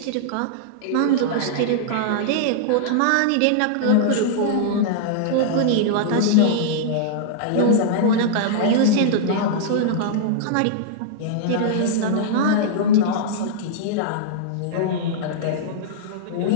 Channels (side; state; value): both; different; correlation -0.02